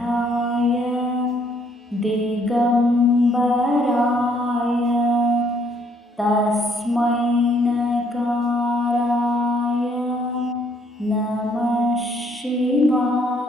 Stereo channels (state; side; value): normal; both; correlation 0.67